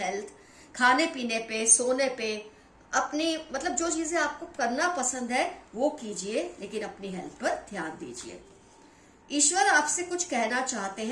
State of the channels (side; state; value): both; identical; correlation 1.00